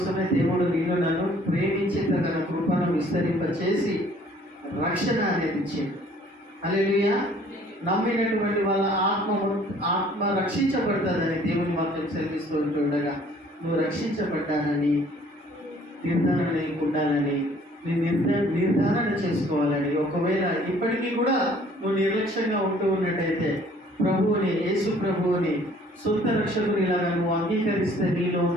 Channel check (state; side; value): normal; both; correlation 0.57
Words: దేవుడు నీలో నన్ను ప్రేమించి తన కృపను విస్తరింపచేసి రక్షణ అనేది ఇచ్చింది. హల్లెలూయా. నమ్మినటువంటి వాళ్ళ ఆత్మ రక్షించబడుతుందని దేవుని వాక్యం సెలవిస్తూ ఉంటుండగా, నువ్వు రక్షించబడ్డానని నిర్ధారణ ఉండాలని, నీ నిర్ధారణ చేసుకోవాలని. ఒకవేళ ఇప్పటికీ కూడా నువ్వు నిర్లక్ష్యంగా ఉంటూ ఉన్నట్టయితే ప్రభువుని, యేసు ప్రభువుని సొంత రక్షకునిలాగా నువ్వు అంగీకరిస్తే నీలో